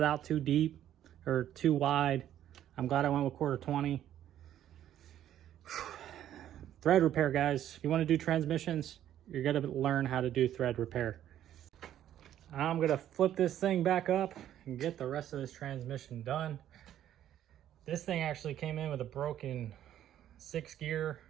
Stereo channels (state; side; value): quieter; left; 11.4 dB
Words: out too deep or too wide. I'm glad I went with 1/4-20. Thread repair, guys. If you want to do transmissions, you're going to learn how to do thread repair. I'm going to flip this thing back up and get the rest of this transmission done. This thing actually came in with a broken 6-gear.